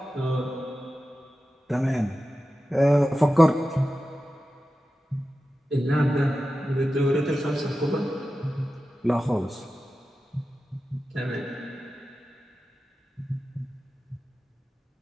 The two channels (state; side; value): normal; both; correlation 0.93